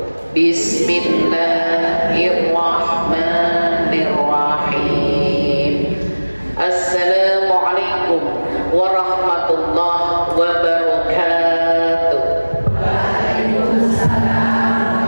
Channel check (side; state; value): both; inverted; correlation -1.00